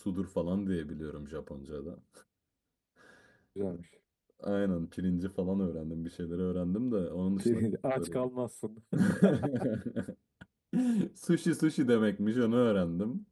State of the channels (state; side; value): identical; both; correlation 1.00